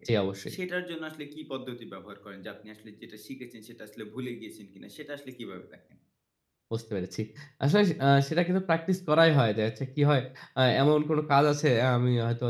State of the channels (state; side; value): identical; both; correlation 1.00